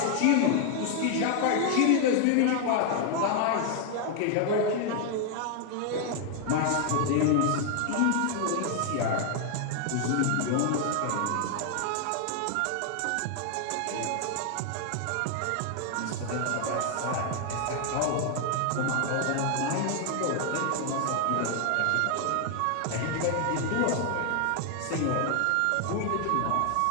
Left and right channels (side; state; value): both; different; correlation 0.00